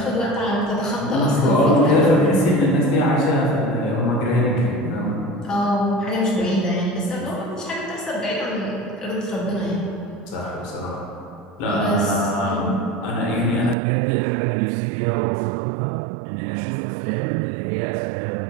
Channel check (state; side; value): drops out; left; at 13.8 s